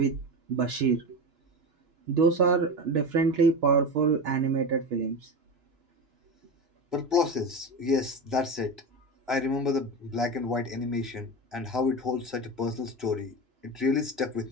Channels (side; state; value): left; late; 3.0 ms